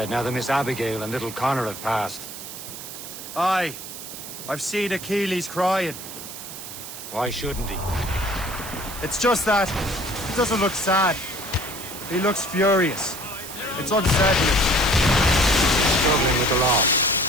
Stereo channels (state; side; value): noise; right; hiss, 11 dB below the sound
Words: now that Miss Abigail and little Connor have passed. Aye. I've seen Achilles crying. Why shouldn't he? It's just that he doesn't look sad. He looks furious. It's unsettling. Struggling with the loss.